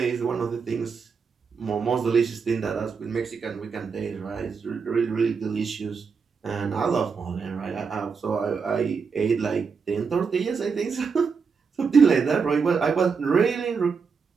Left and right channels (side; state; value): left; quieter; 5.5 dB